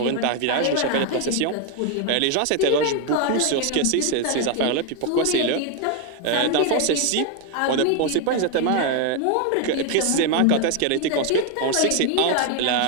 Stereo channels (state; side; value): different; both; correlation 0.01